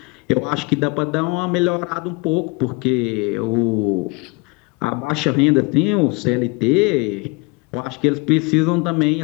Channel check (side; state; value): right; quieter; 28.2 dB